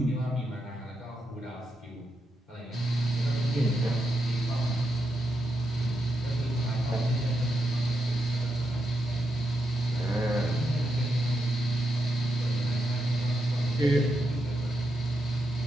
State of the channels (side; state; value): both; normal; correlation 0.84